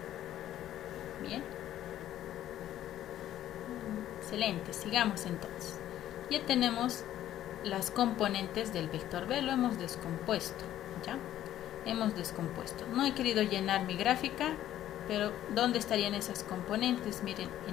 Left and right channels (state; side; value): quieter; right; 12.3 dB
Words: Bien. Excelente, sigamos entonces. Ya tenemos las componentes del vector B, lo hemos descompuesto. ¿Ya? Hemos descompuesto. No he querido llenar mi gráfica, pero ¿dónde estarían esas componentes? Miren,